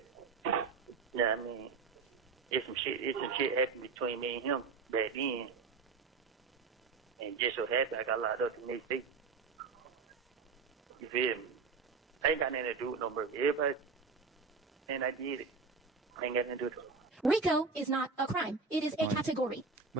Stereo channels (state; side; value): quieter; left; 4.8 dB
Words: you know what I mean, it's some shit happened between me and him back then. And just so happened I got locked up the next day. You feel me? I ain't got nothing to do with no murder. Everybody, and I did it. I ain't got nothing to do with it. RICO is not a crime. It is a category.